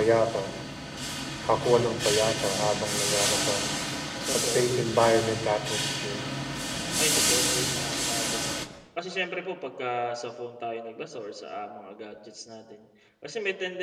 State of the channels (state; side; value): identical; both; correlation 1.00